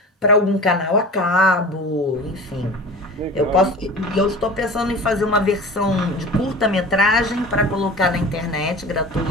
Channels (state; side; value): normal; both; correlation 0.36